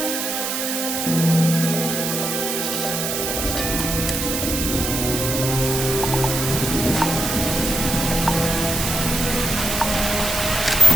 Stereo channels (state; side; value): noise; right; hiss, 2 dB below the sound